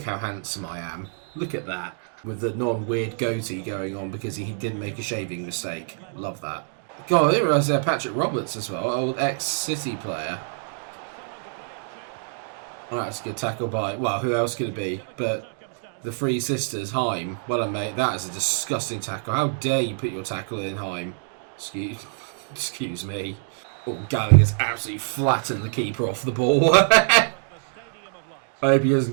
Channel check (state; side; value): silent; left; digital silence